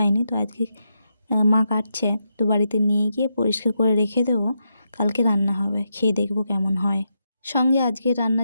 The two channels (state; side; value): inverted; both; correlation -0.84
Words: তো আজকে মা কাটছে, তো বাড়িতে নিয়ে গিয়ে পরিষ্কার করে রেখে দেবো, কালকে রান্না হবে, খেয়ে দেখবো কেমন হয়। সঙ্গে আজকে